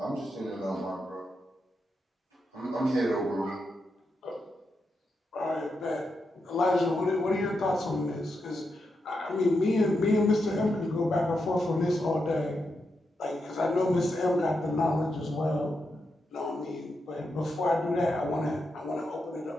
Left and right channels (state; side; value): normal; both; correlation 0.85